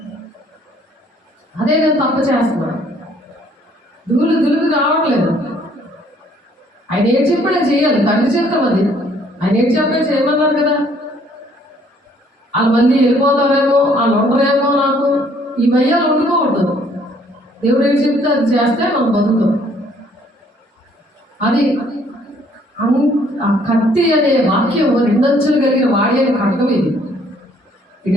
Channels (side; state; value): both; normal; correlation 0.62